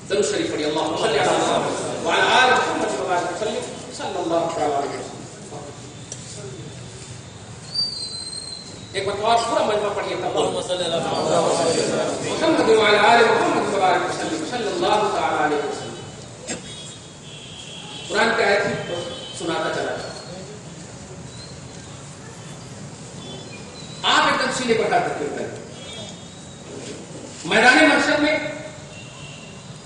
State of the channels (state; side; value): identical; both; correlation 1.00